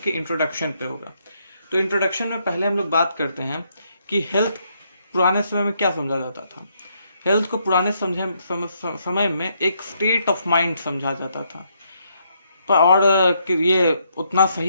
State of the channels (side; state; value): both; inverted; correlation -0.74